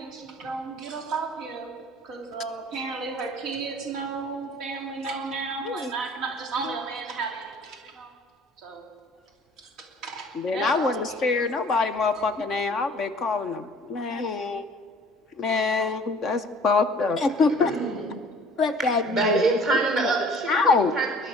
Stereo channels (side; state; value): both; normal; correlation 0.51